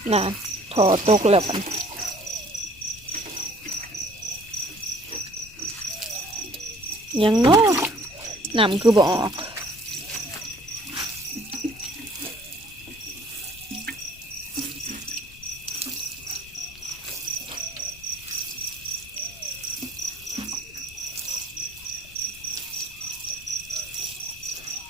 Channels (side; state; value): left; noise; rumble, 21 dB below the sound